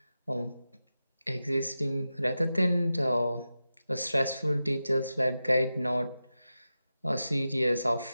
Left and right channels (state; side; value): inverted; both; correlation -0.92